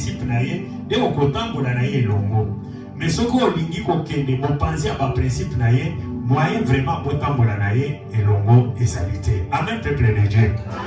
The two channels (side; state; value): both; identical; correlation 1.00